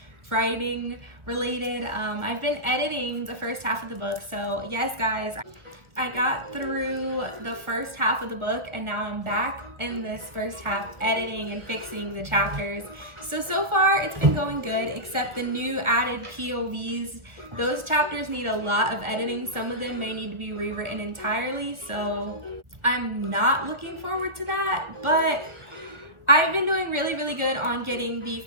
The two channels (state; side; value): late; left; 1.3 ms